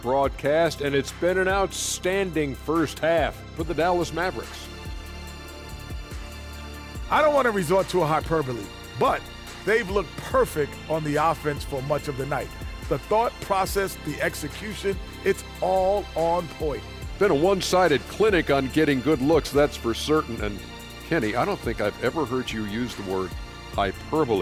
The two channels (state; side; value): identical; both; correlation 1.00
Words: broadcast, and it's been an outstanding first half for the Dallas Mavericks. I don't want to resort to a hyperbole, but they've looked perfect on the offense for much of the night. The thought process, the execution, it's all on point. Been a one-sided clinic on getting good looks, that's for certain. And Kenny, I don't think I've ever heard you use the word